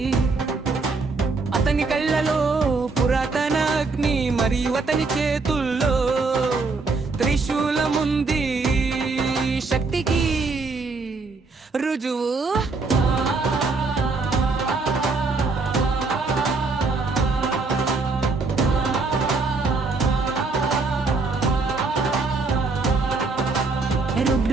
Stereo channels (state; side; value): quieter; left; 3.9 dB